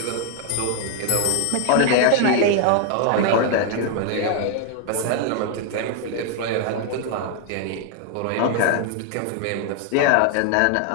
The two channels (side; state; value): both; different; correlation 0.00